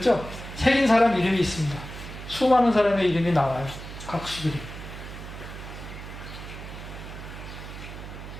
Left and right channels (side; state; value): right; noise; hum, 11 dB below the sound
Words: 새긴 사람 이름이 있습니다. 수많은 사람의 이름이 나와요. 각수들이.